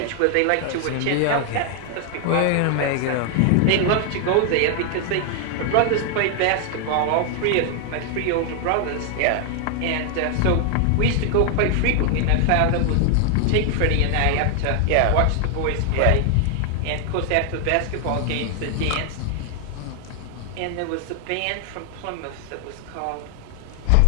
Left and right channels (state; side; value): different; both; correlation 0.00